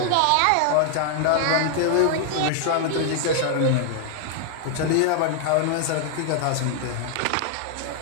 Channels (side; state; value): both; different; correlation 0.00